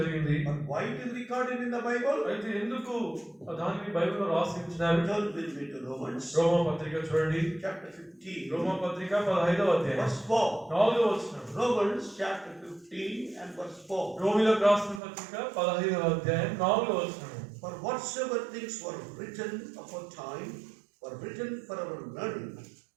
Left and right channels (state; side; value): drops out; left; at 15.0 s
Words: but why it is recorded in the Bible? అయితే ఎందుకు దానిని బైబిల్లో రాసి ఉంచినారు? Turn with me to Romans రోమా పత్రిక చూడండి, chapter 15, రోమా పత్రిక 15వ అధ్యాయం verse 4. 4వ వచనం. Romans chapter 15 and verse 4. రోమీయులకు రాసిన పత్రిక 15వ అధ్యాయం 4వ వచనం. For whatsoever things were written aforetime were written for our learning,